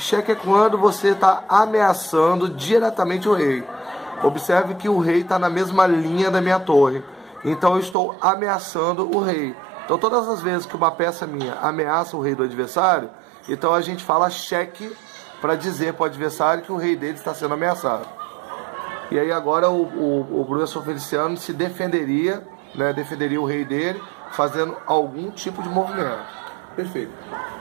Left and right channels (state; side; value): drops out; left; at 8.0 s